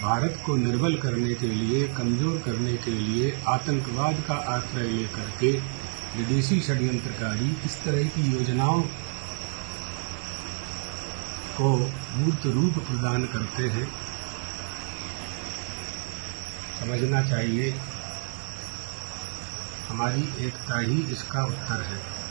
भारत को निर्बल करने के लिए, कमजोर करने के लिए आतंकवाद का आश्रय लेकर के विदेशी षड्यंत्रकारी इस तरह की योजनाओं को मूर्त रूप प्रदान करते हैं। समझना चाहिए हमारी एकता ही इसका उत्तर है।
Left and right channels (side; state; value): left; silent; 59 dB below the other